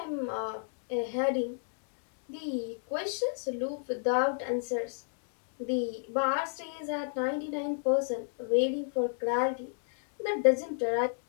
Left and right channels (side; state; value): right; silent; digital silence